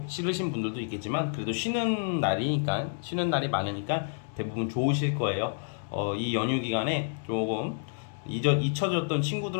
싫으신 분들도 있겠지만 그래도 쉬는 날이 많으니까 대부분 좋으실 거예요. 이 연휴 기간에 조금 잊혀졌던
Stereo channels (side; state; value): right; silent; digital silence